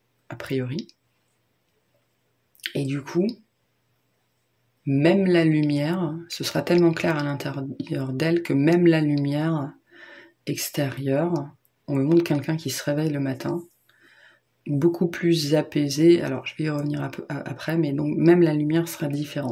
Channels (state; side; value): identical; both; correlation 1.00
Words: a priori. Et du coup, même la lumière, ce sera tellement clair à l'intérieur d'elle que même la lumière extérieure, on me montre quelqu'un qui se réveille le matin, beaucoup plus apaisé, alors je vais y revenir un peu après, mais donc même la lumière sera